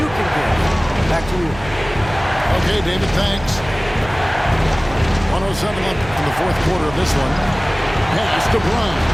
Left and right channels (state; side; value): noise; right; hum, 15 dB below the sound